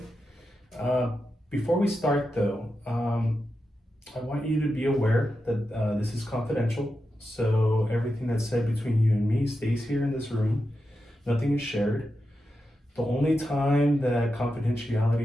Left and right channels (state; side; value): normal; both; correlation 0.89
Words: Before we start, though, I want you to be aware that this is confidential. So everything that's said between you and me stays here in this room. Nothing is shared. The only time that